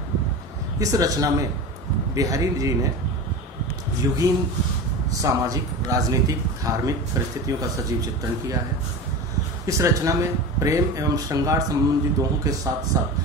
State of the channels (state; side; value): normal; both; correlation 0.29